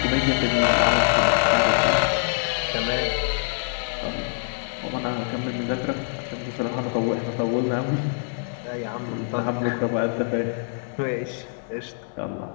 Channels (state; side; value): silent; right; digital silence